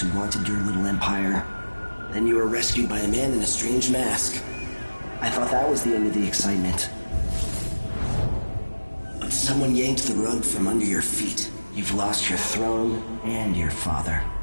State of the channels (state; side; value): inverted; both; correlation -1.00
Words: wanted your little empire. Then you were rescued by a man in a strange mask. I thought that was the end of the excitement. But someone yanked the rug from under your feet. You've lost your throne and your father.